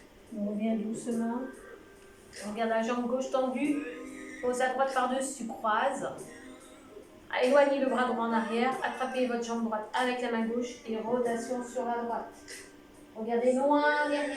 doucement. On regarde la jambe gauche tendue. Pose à droite par-dessus, croise. Éloignez le bras droit en arrière. Attrapez votre jambe droite avec la main gauche et rotation sur la droite. Regardez loin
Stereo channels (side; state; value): both; identical; correlation 1.00